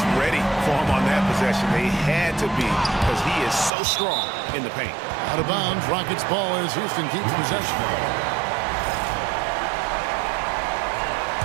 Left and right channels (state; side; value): drops out; left; at 3.7 s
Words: ready for him on that possession. They had to be because he is so strong in the paint. Out of bounds, Rockets ball as Houston keeps possession.